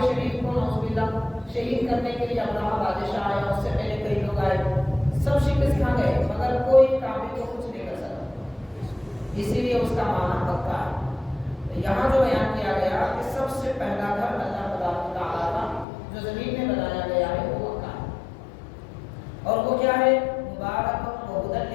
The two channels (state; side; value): drops out; right; at 15.9 s